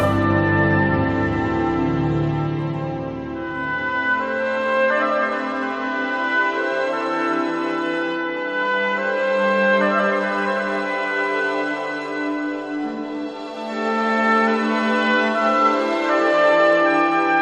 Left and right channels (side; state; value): both; identical; correlation 1.00